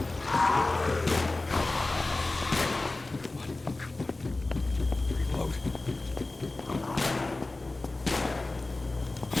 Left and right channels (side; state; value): right; quieter; 3.1 dB